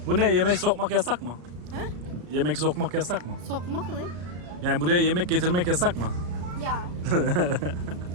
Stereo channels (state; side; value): late; left; 34 ms